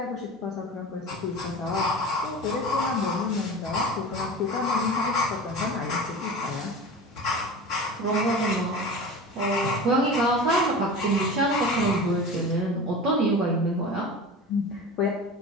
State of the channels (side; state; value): both; normal; correlation 0.33